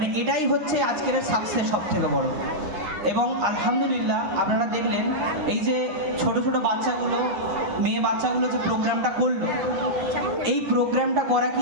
এটাই হচ্ছে আজকের সাকসেস সব থেকে বড়। এবং আলহামদুলিল্লাহ আপনারা দেখলেন এই যে ছোট ছোট বাচ্চাগুলো, মেয়ে বাচ্চাগুলো যে প্রোগ্রামটা করলো, এই প্রোগ্রামটা করা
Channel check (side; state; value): left; late; 9.7 ms